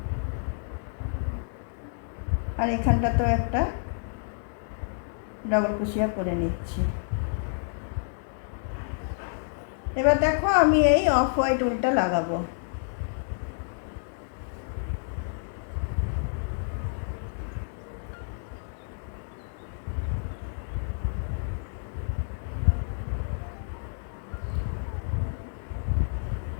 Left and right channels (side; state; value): right; silent; digital silence